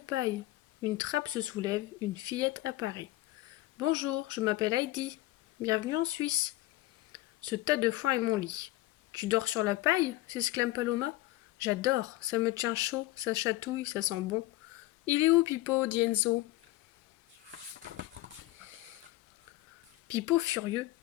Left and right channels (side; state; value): right; quieter; 17.5 dB